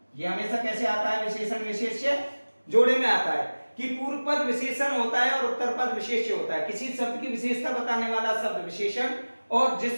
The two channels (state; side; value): inverted; both; correlation -1.00